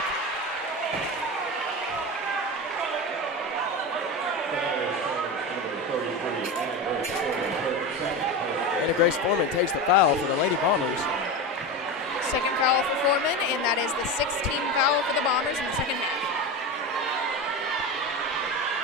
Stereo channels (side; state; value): both; normal; correlation 0.22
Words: And Grace Foreman takes the foul for the Lady Bombers. Second foul for Foreman, and that is the 16th foul for the Bombers in the second half.